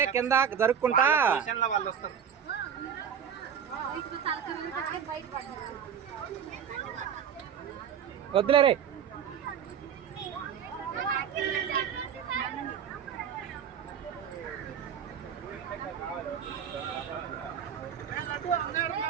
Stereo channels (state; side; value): quieter; left; 8.0 dB